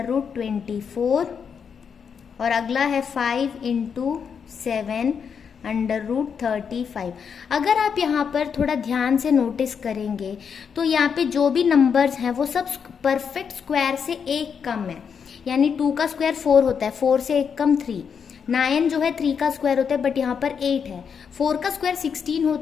और अगला है 5 इंटू 7 √35। अगर आप यहाँ पर थोड़ा ध्यान से नोटिस करेंगे तो यहाँ पे जो भी नंबर्स हैं वो सब परफेक्ट स्क्वायर से एक कम है, यानी 2 का स्क्वायर 4 होता है, 4 से एक कम 3। 9 जो है 3 का स्क्वायर होता है, बट यहाँ पर 8 है। 4 का स्क्वायर 16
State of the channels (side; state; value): right; quieter; 6.7 dB